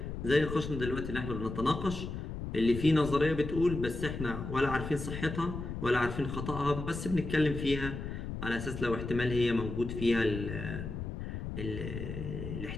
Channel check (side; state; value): left; noise; rumble, 6 dB below the sound